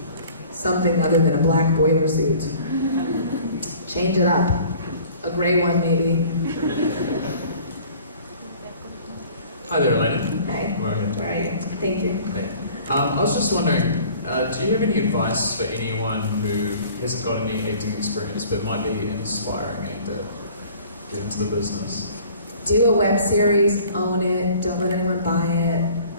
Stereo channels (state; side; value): inverted; both; correlation -0.50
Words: something other than a black boiler suit. Change it up. A gray one, maybe. Hi there, Elena. Hi. Go ahead. All right. Thank you. Hey. I was just wondering, do you have any advice for anyone who hasn't got any acting experience but might be an aspiring actor, get into the business? Do a web series, own it, don't let anyone buy it.